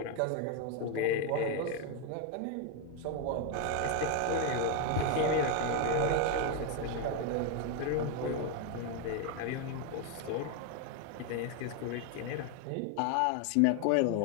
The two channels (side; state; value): both; different; correlation 0.01